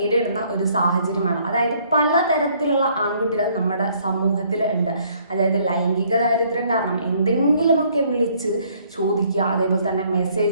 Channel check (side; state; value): both; inverted; correlation -0.64